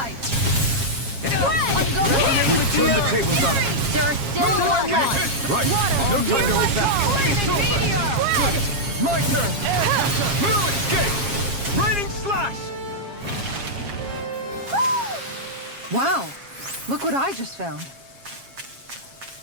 We turned the tables on him. There are still more left! Right. No time to hold back. It's over! Good! My turn! No escape! Raining slash! Wow. Look what I just found.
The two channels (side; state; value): left; late; 7.4 ms